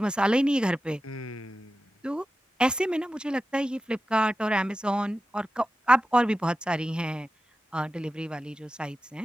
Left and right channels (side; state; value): both; normal; correlation 0.93